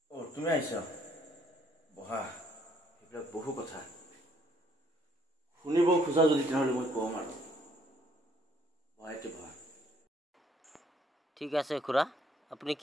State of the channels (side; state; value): both; normal; correlation 0.66